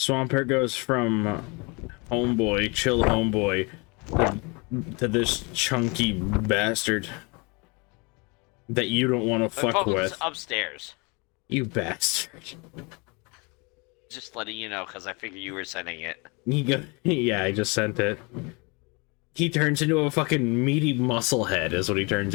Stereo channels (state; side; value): quieter; right; 29.4 dB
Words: goes from homeboy, chill homeboy, to this chunky bastard that you don't want to My fuck phone's with. upstairs. You bastard. Just letting you know, because I figured you were sending it. Yeah, I just sent it. He turns into a fucking meaty muscle head is what he turns